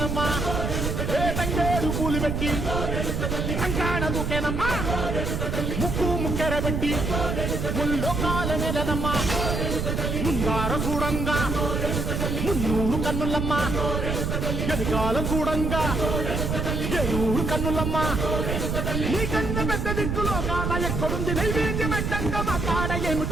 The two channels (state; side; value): noise; right; rumble, 1 dB below the sound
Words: ఏ తంగేరు పూలు పెట్టి కంకాణ దూకేనమ్మా, ముక్కు ముక్కెర పెట్టి ముల్లోకాల నెలనమ్మా, ముందార చూడంగా మున్నూరు కన్నులమ్మా, ఎదికాలం చూడంగా ఏనూరు కన్నులమ్మా, నీ కన్న పెద్ద దిక్కులో కాల ఎక్కడుంది నైవేద్యం పెట్టంగా మా కాడ